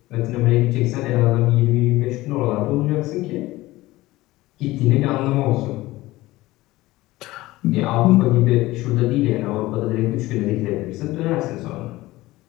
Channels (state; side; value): quieter; right; 18.3 dB